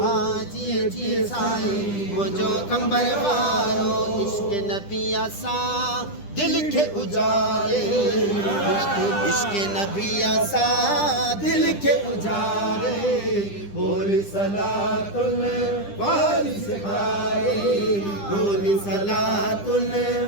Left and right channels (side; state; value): right; late; 10 ms